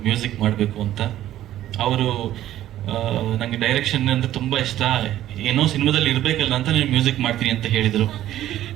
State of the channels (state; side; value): quieter; left; 13.0 dB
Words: ಮ್ಯೂಸಿಕ್ ಮಾಡಬೇಕು ಅಂತ. ಅವರು ನಂಗೆ ಡೈರೆಕ್ಷನ್ ಅಂದ್ರೆ ತುಂಬಾ ಇಷ್ಟ, ಏನೋ ಸಿನಿಮಾದಲ್ಲಿ ಇರ್ಬೇಕಲ್ಲ ಅಂತ ನೀವು ಮ್ಯೂಸಿಕ್ ಮಾಡ್ತೀನಿ ಅಂತ ಹೇಳಿದ್ರು.